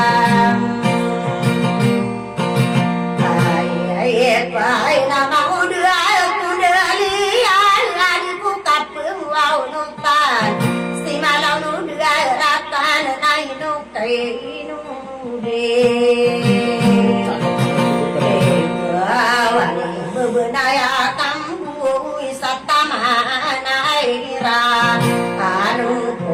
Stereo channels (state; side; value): identical; both; correlation 1.00